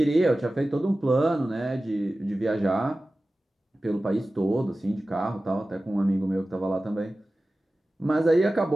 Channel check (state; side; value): normal; both; correlation 0.96